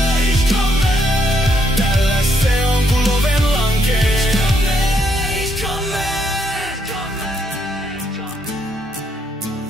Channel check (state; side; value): normal; both; correlation 0.74